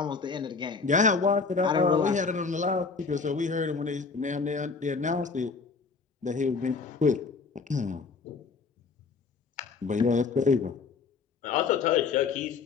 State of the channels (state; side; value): quieter; right; 4.8 dB